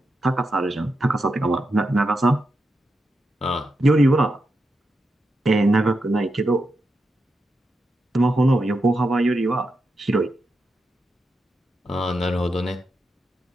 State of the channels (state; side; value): normal; both; correlation 0.87